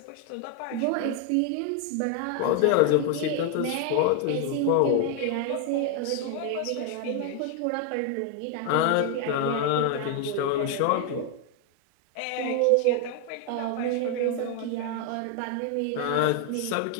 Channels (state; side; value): different; both; correlation 0.01